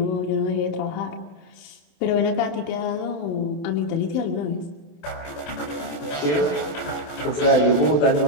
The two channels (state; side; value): late; right; 27 ms